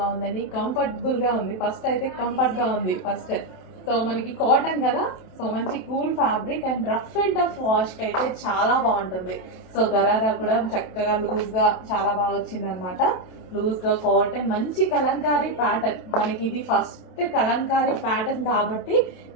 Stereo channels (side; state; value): right; late; 27 ms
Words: ఉందండి. కంఫర్టబుల్గా ఉంది. ఫస్ట్ అయితే కంఫర్ట్గా ఉంది ఫస్ట్. సో మనకి కాటన్ కదా, సో మంచి cool fabric and rough and tough వాష్కి అయితే చాలా బాగుంటుంది. సో గరారా కూడా చక్కగా లూజ్గా చాలా బాగా వచ్చింది అనమాట. లూజ్గా కాటన్, మంచి కలంకారీ ప్యాటర్న్. మనకి ఇది ఫస్ట్ కలంకారీ ప్యాటర్న్ కాబట్టి